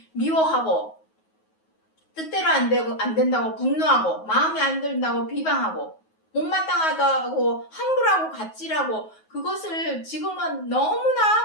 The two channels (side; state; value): right; late; 9.4 ms